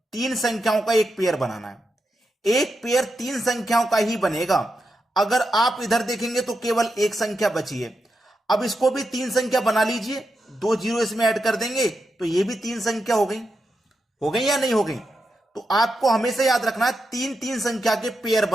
3 संख्याओं का एक पेयर बनाना है। एक पेयर 3 संख्याओं का ही बनेगा। अगर आप इधर देखेंगे तो केवल एक संख्या बची है। अब इसको भी 3 संख्या बना लीजिए, 2 जीरो इसमें ऐड कर देंगे तो ये भी 3 संख्या हो गई या नहीं हो गई। तो आपको हमेशा याद रखना है 3 संख्या के पेयर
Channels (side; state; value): both; normal; correlation 0.87